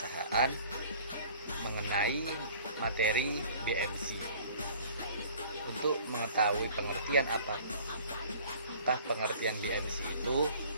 mengenai materi BMC. Untuk mengetahui pengertian apakah pengertian BMC itu,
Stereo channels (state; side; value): inverted; both; correlation -0.50